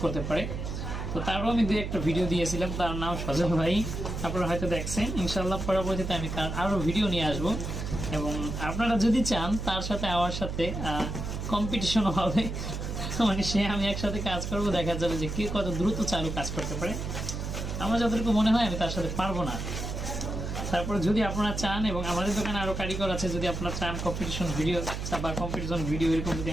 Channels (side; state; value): right; noise; hum, 5 dB below the sound